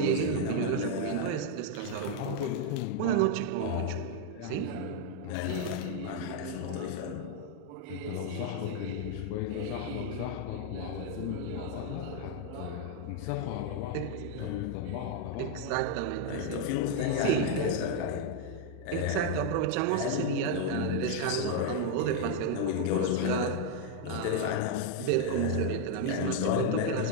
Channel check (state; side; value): different; both; correlation 0.00